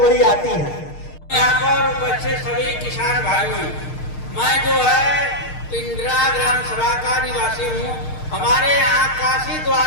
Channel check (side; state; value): right; late; 6.5 ms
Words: आती हैं। यहाँ पर बच्चे सभी किसान भाइयों, मैं जो है पिंडरा ग्राम सभा का निवासी हूँ। हमारे यहाँ काशी